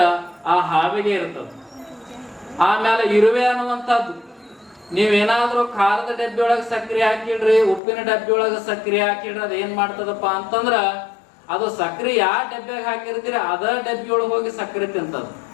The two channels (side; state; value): right; drops out; at 7.8 s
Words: ಆ ಹಾವಿಗೆ ಇರ್ತದ. ಆಮೇಲೆ ಇರುವೆ ಅನ್ನುವಂಥದ್ದು, ನೀವೇನಾದ್ರೂ ಖಾರದ ಡಬ್ಬಿ ಒಳಗೆ ಸಕ್ಕರೆ ಹಾಕಿಡ್ರಿ, ಉಪ್ಪಿನ ಡಬ್ಬಿ ಒಳಗೆ ಸಕ್ಕರೆ ಹಾಕಿಡ್ರಿ, ಅದ ಏನ್ ಮಾಡ್ತದಪ್ಪ ಅಂತಂದ್ರ ಅದು ಸಕ್ಕರೆ ಯಾವ ಡಬ್ಬಿಯಾಗ ಹಾಕಿರ್ತೀರಿ ಅದ ಡಬ್ಬಿ ಒಳಗೆ ಹೋಗಿ ಸಕ್ಕರೆ ತಿಂತದ.